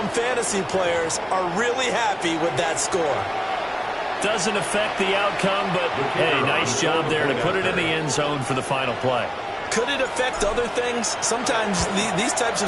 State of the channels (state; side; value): identical; both; correlation 1.00